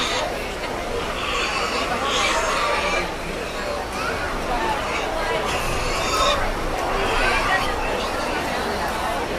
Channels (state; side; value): identical; both; correlation 1.00